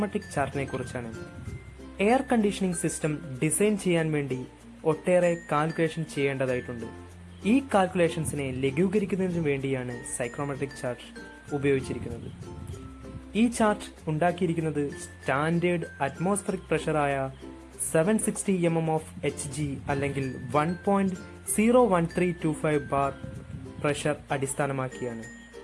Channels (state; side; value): identical; both; correlation 1.00